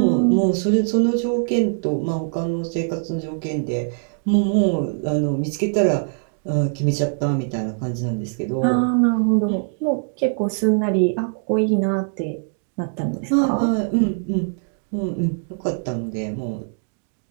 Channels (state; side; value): silent; left; digital silence